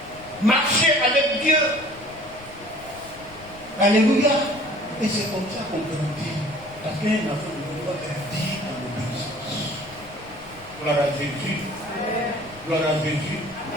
Marcher avec Dieu. Alléluia. Et c'est comme ça qu'on grandit. Parce qu'un enfant de Dieu doit grandir en obéissance. Gloire à Jésus. Gloire à Jésus.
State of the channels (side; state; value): left; noise; rumble, 21 dB below the sound